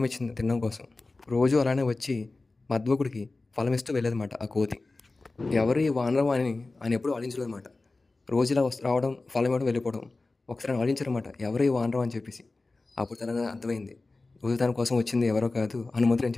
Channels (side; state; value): right; quieter; 3.4 dB